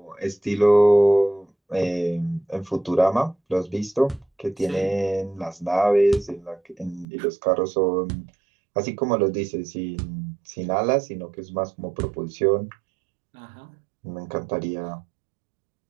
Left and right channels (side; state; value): left; drops out; at 7.1 s